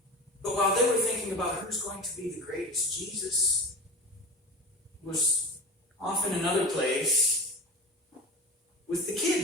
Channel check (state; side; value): normal; both; correlation 0.32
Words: But while they were thinking about who's going to be the greatest, Jesus was off in another place with the